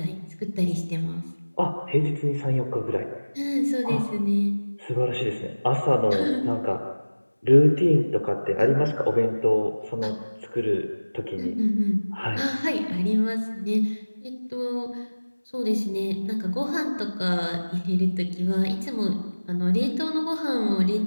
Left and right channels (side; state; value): both; inverted; correlation -1.00